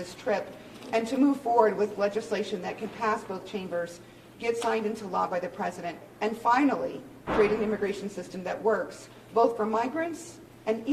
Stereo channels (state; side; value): identical; both; correlation 1.00